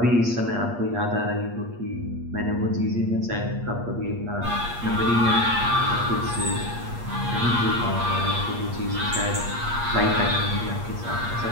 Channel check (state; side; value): late; left; 8.5 ms